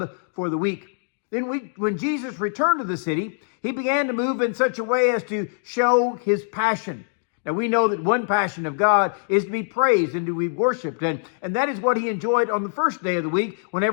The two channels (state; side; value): silent; right; digital silence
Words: for the week. Then when Jesus returned to the city, he began to move in such a way as to show his passion. Now, we know that one passion of God is to be praised and to be worshiped. And that is what he enjoyed on the first day of the week,